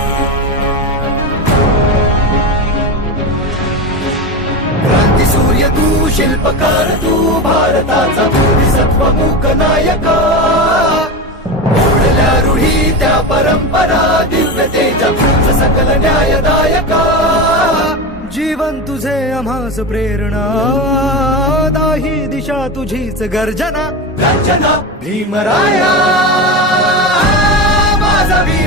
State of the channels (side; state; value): both; normal; correlation 0.20